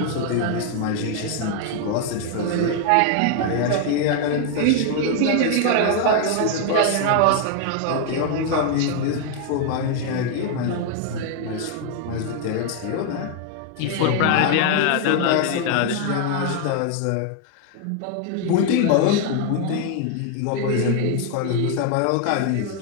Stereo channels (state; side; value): different; both; correlation 0.00